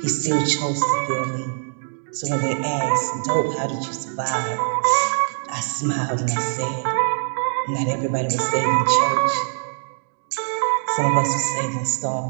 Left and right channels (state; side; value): silent; left; digital silence